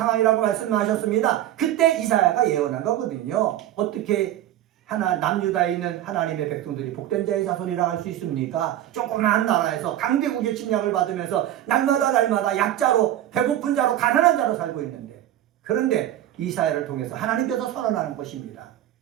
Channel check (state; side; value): quieter; left; 12.7 dB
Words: 말씀하셨습니다. 그때 이사야가 예언한 거거든요. 어떻게 남유다에 있는 하나님의 백성들이 복된 자의 자손이라 할 수 있습니까? 조그마한 나라에서 강대국의 침략을 받으면서 날마다 약자로 배고픈 자로 가난한 자로 살고 있는데 그런데 이사야를 통해서 하나님께서 선언하는 것입니다.